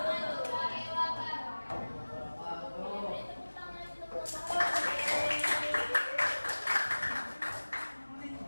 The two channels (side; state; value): both; inverted; correlation -1.00